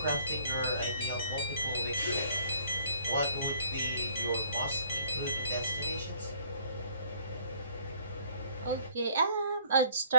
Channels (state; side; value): inverted; both; correlation -0.60